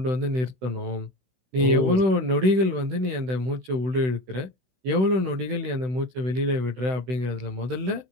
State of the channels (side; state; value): left; late; 16 ms